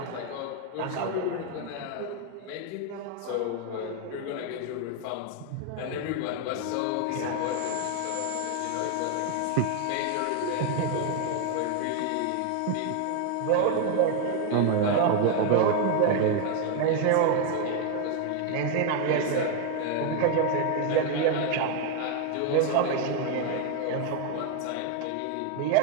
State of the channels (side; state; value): both; different; correlation 0.01